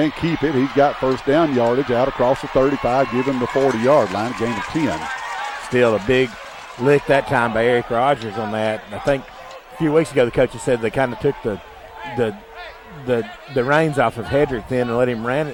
keep it. He's got first down yardage out across the 35. Give him the 40-yard line. Gain of 10. Still a big lick that time by Eric Rogers on that. I think a few weeks ago the coaches said they kind of took the reins off of Hedrick then and let him run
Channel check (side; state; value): both; identical; correlation 1.00